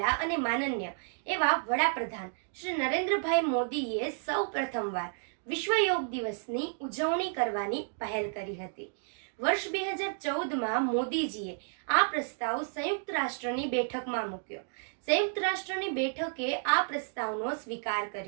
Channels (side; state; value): left; silent; digital silence